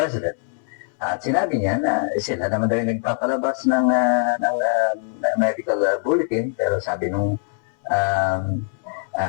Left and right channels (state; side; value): silent; right; digital silence